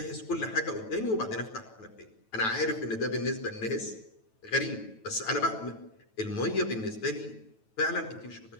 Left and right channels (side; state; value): right; late; 9.1 ms